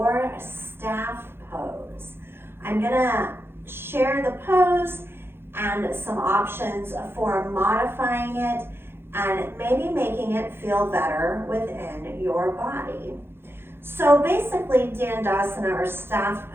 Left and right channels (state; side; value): late; left; 0.11 ms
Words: staff pose. I'm gonna share the pose and some options for modifying it and maybe making it feel better within your body. So basically, Dandasana or staff